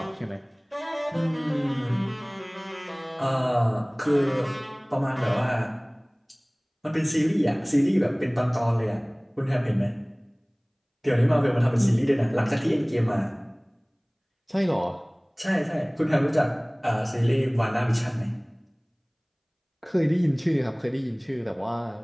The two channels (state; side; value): identical; both; correlation 1.00